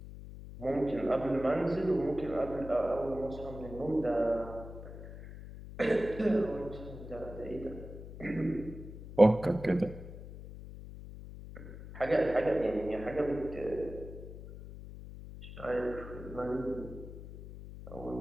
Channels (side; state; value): left; noise; hum, 12 dB below the sound